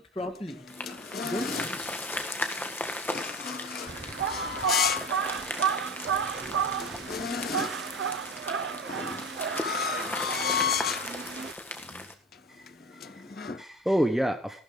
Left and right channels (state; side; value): normal; both; correlation 0.34